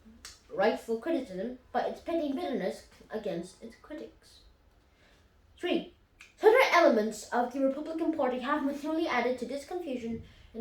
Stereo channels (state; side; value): identical; both; correlation 1.00